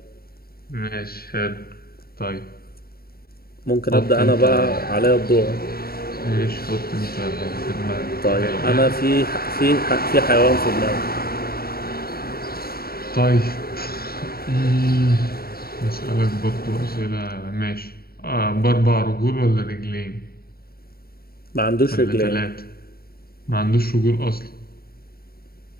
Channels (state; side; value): late; right; 0.44 ms